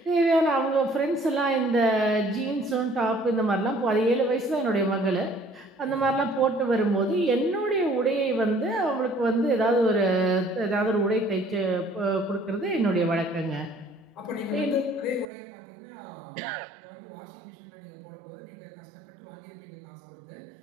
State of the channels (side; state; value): left; drops out; at 15.2 s